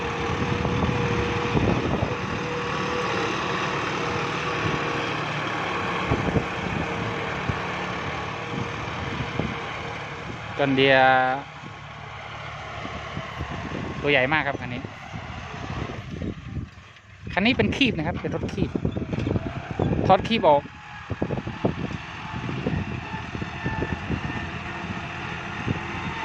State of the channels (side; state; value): both; identical; correlation 1.00